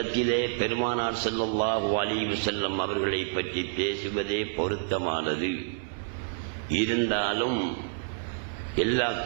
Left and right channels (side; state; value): left; silent; digital silence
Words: பெருமானார் ஸல்லல்லாஹு அலைஹி வஸல்லம் அவர்களை பற்றி பேசுவதே பொருத்தமானது. இருந்தாலும் எல்லா